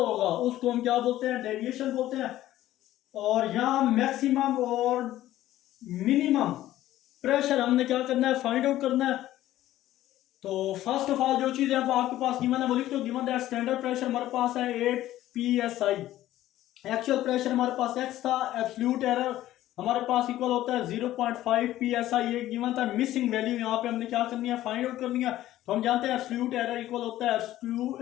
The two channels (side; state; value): right; quieter; 14.2 dB